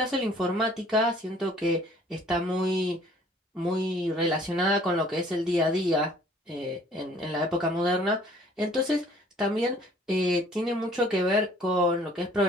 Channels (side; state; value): both; normal; correlation 0.55